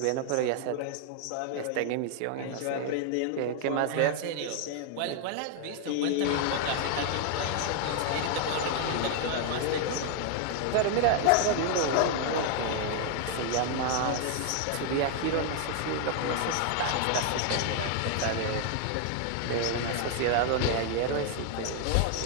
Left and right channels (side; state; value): both; different; correlation 0.00